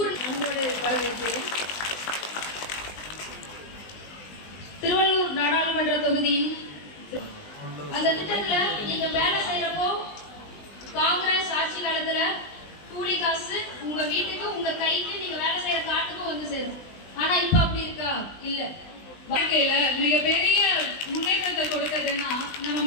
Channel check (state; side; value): late; right; 20 ms